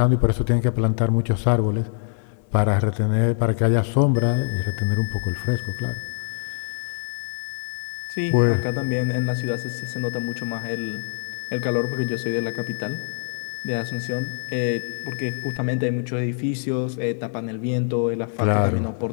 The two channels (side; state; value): right; silent; digital silence